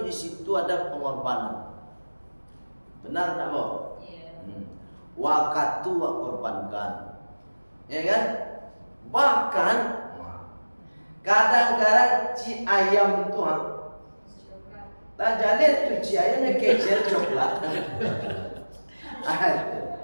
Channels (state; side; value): inverted; both; correlation -1.00